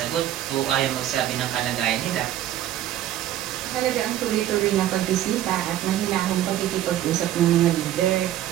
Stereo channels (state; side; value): quieter; left; 12.5 dB